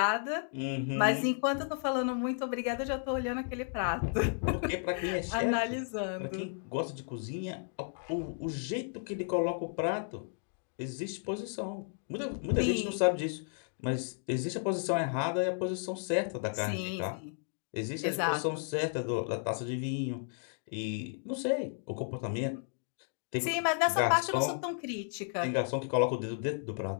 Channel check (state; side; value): silent; right; 55 dB below the other